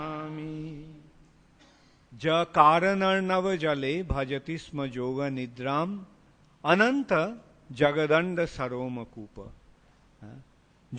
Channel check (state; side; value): identical; both; correlation 1.00